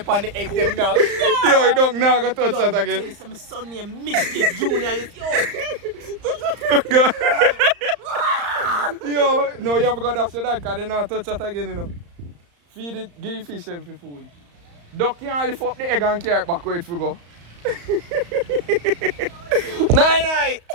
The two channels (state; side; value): late; left; 35 ms